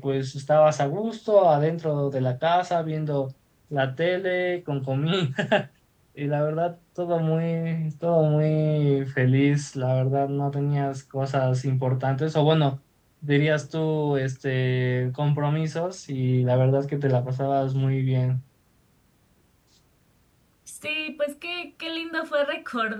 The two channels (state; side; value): identical; both; correlation 1.00